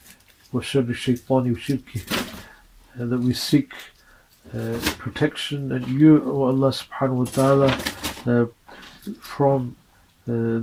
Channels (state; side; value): identical; both; correlation 1.00